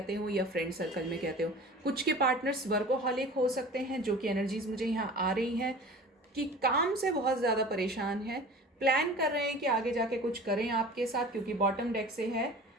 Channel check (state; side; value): normal; both; correlation 0.40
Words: हो, या फ्रेंड सर्कल में कहते हो। कुछ के पार्टनर्स वर्कोहॉलिक हो सकते हैं, जो कि एनर्जीज मुझे यहाँ आ रही हैं कि काम से बहुत ज़्यादा परेशान है, प्लान कर रहे हैं कि आगे जाके कुछ करें आपके साथ, क्योंकि बॉटम डेक से है